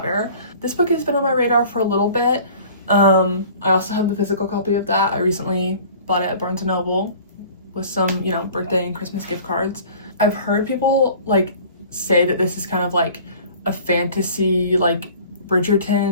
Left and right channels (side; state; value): both; inverted; correlation -0.47